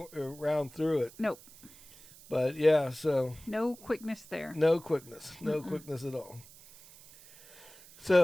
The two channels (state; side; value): noise; right; hiss, 21 dB below the sound